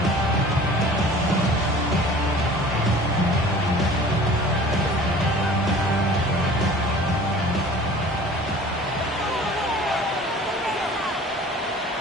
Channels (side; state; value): both; normal; correlation 0.45